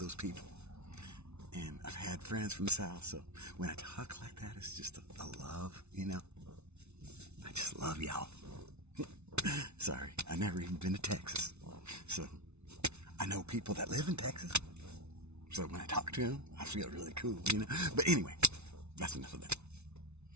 people. And I've had friends from the South, so when I talk like that, it's just a love, you know? I just love y'all. Sorry, I've never even been to Texas. So, I know people that live in Texas. So when I talk to them, I feel really cool, you know? But anyway, that's enough of that.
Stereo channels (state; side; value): late; left; 0.81 ms